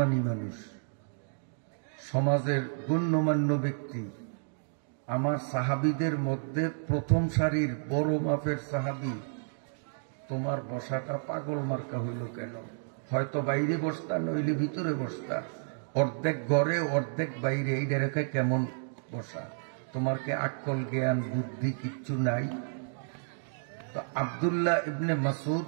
মানুষ, সমাজের গণ্যমান্য ব্যক্তি, আমার সাহাবীদের মধ্যে প্রথম সারির বড় মাপের সাহাবী, তোমার বসাটা পাগল মার্কা হইল কেন? হয়তো বাইরে বসতা, নইলে ভিতরে বসতা। অর্ধেক ঘরে অর্ধেক বাইরে, এইটা রেখে কেমন বসা? তোমার কি আক্কল জ্ঞান বুদ্ধি কিচ্ছু নাই? তো আব্দুল্লাহ ইবনে মাসউদ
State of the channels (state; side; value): silent; left; digital silence